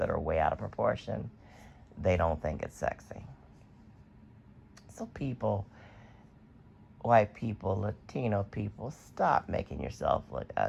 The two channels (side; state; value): both; identical; correlation 1.00